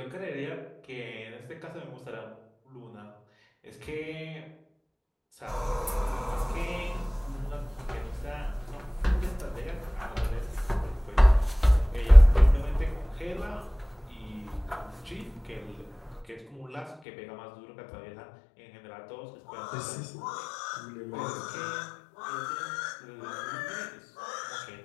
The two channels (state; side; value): drops out; right; at 16.9 s